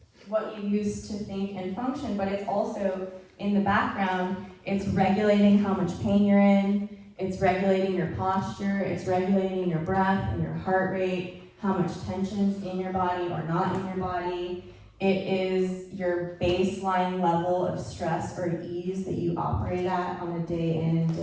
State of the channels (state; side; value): identical; both; correlation 1.00